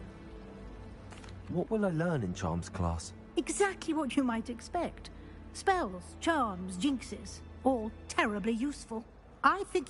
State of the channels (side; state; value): both; identical; correlation 1.00